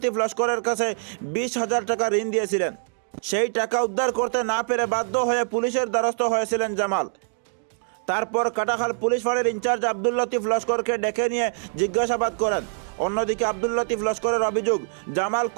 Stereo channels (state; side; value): silent; left; digital silence